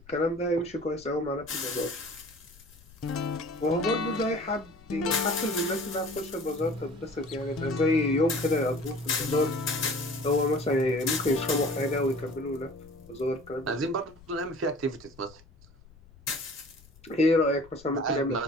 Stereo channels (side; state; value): left; noise; rumble, 24 dB below the sound